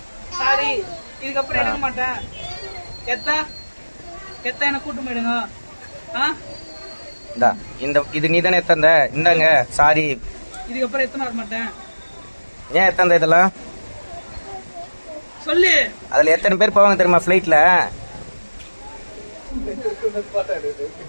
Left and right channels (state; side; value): inverted; both; correlation -1.00